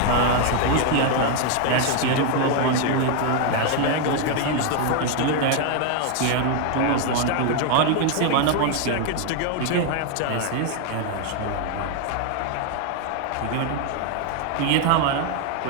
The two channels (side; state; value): both; different; correlation 0.00